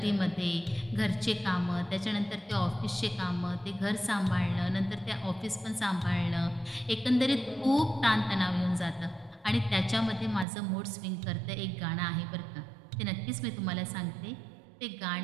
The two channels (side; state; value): left; drops out; at 10.5 s